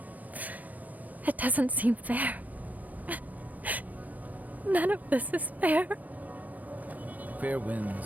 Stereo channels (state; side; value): late; left; 0.079 ms